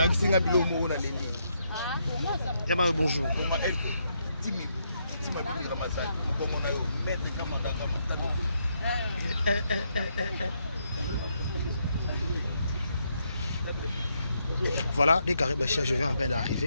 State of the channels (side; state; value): both; inverted; correlation -0.77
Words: Bonjour. Voilà, les carrés Bachia, je viens en peine